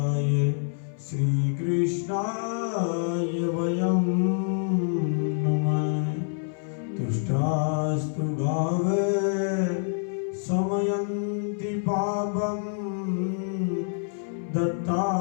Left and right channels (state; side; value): silent; right; 58 dB below the other